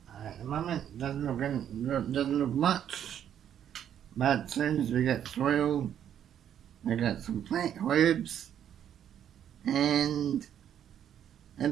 At the moment, doesn't look much, but as soon as we get soil, we got some plant herbs, and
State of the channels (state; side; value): quieter; left; 9.7 dB